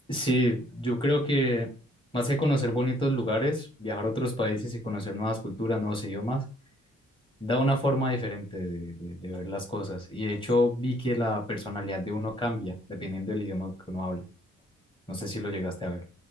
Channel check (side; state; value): both; normal; correlation 0.65